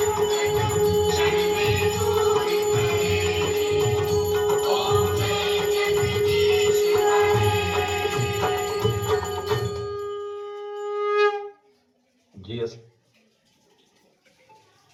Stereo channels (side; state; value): both; identical; correlation 1.00